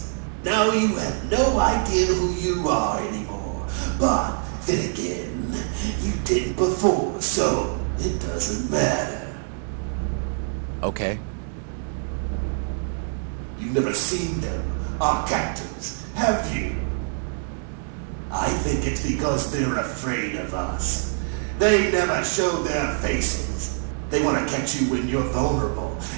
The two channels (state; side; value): silent; left; 57 dB below the other